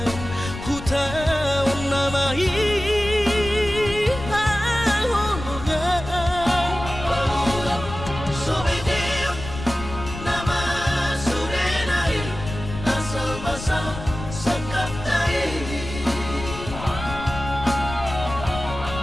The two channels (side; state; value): left; noise; rumble, 10 dB below the sound